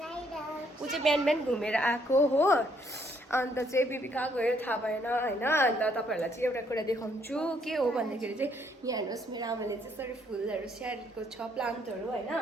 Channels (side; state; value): both; normal; correlation 0.69